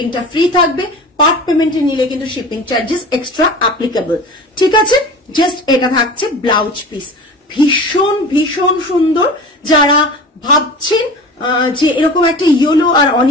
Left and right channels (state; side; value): normal; both; correlation 0.36